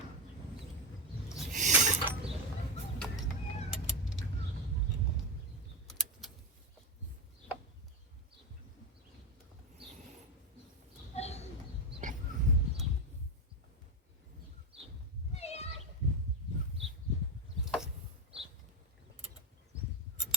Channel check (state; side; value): normal; both; correlation 0.11